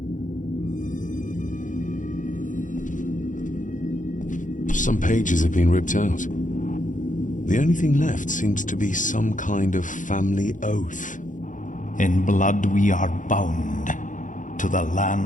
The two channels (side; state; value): right; late; 0.37 ms